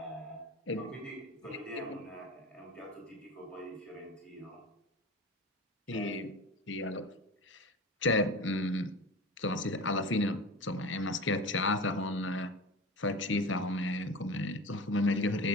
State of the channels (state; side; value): normal; both; correlation 0.32